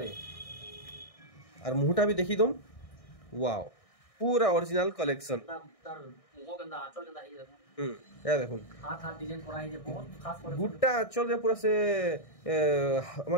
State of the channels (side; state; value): right; late; 1.6 ms